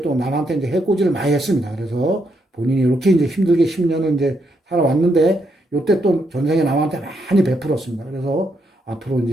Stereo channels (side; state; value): both; normal; correlation 0.78